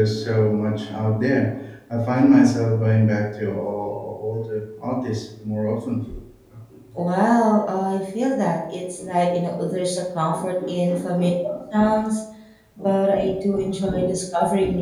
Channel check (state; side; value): identical; both; correlation 1.00